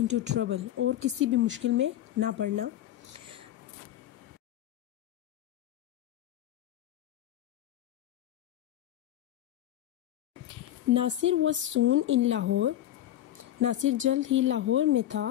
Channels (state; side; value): quieter; right; 12.5 dB